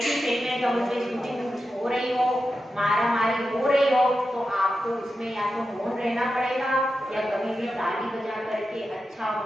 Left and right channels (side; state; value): both; normal; correlation 0.90